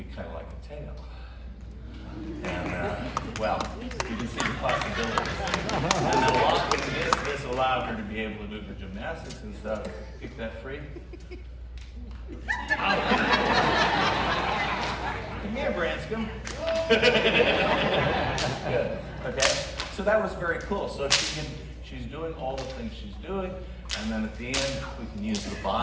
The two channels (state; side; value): identical; both; correlation 1.00